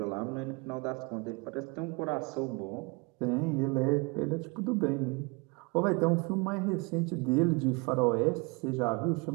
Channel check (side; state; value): left; quieter; 29.0 dB